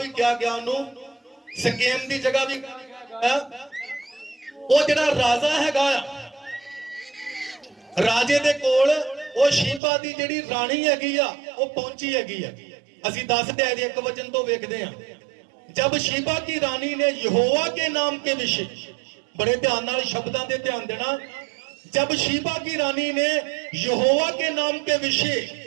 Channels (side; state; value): left; drops out; at 9.8 s